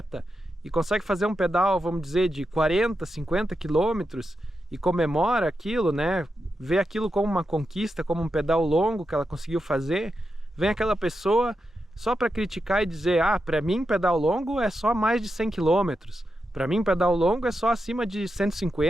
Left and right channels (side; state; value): both; normal; correlation 0.87